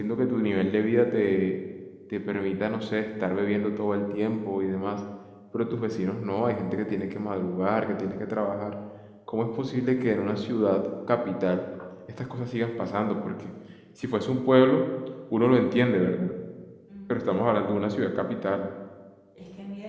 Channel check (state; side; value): identical; both; correlation 1.00